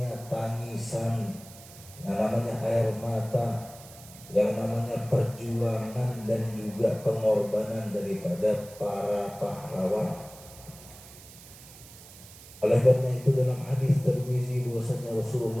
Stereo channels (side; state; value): right; noise; hiss, 19 dB below the sound